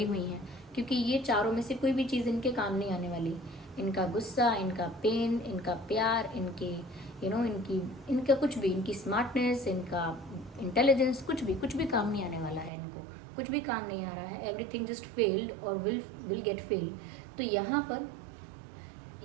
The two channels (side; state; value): left; drops out; at 12.7 s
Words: हुई हैं, क्योंकि ये चारों में से कोई भी चीज़ इनके काम नहीं आने वाली। इनका गुस्सा, इनका पेन, इनका प्यार, इनकी इनका कुछ भी, इनकी स्मार्टनेस, इनका इंटेलिजेंस, कुछ भी काम नहीं आने वाला है। इनको कुछ भी काम नहीं आ रहा है। एवरीथिंग जस्ट फेल्ड और विल गेट फेल्ड। तो यहाँ पर